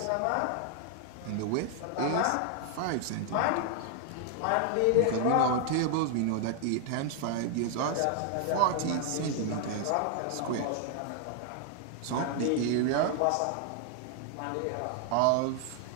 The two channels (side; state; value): both; different; correlation 0.00